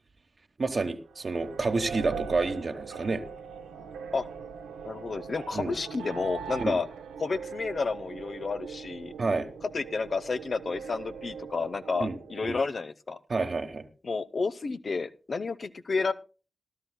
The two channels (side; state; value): both; normal; correlation 0.89